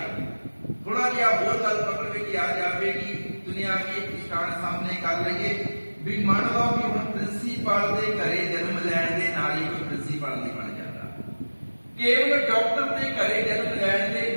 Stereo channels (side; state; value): both; inverted; correlation -1.00